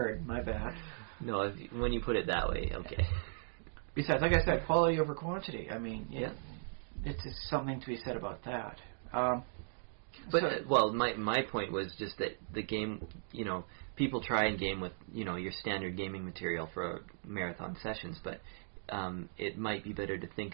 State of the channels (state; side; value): silent; left; digital silence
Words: My bad. No, when you put it that way, okay. Besides, like I said, quality over quantity. I mean, yeah. It's just something to be said about that. My point was just that the game, people try and game with, your standard gaming material for marathon sessions, but it might be better to think